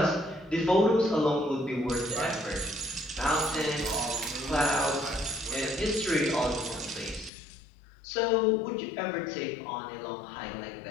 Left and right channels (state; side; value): drops out; right; at 7.3 s